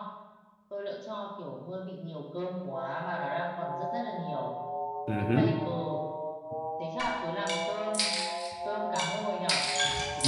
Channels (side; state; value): both; identical; correlation 1.00